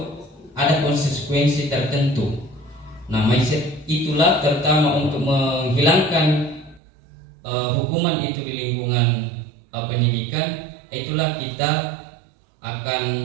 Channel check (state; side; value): drops out; left; at 6.8 s